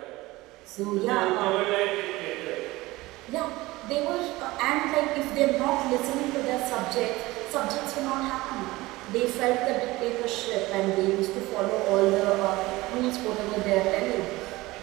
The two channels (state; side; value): quieter; left; 19.8 dB